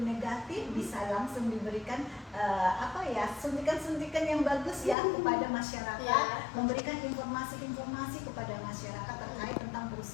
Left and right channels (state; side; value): drops out; right; at 5.0 s